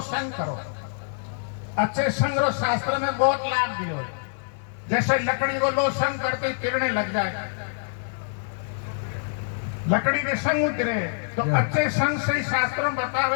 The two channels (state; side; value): silent; right; digital silence